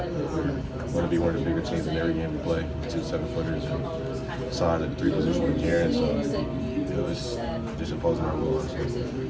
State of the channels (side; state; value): both; identical; correlation 1.00